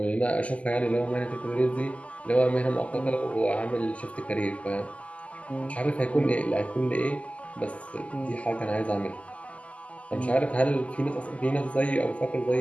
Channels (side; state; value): right; late; 0.067 ms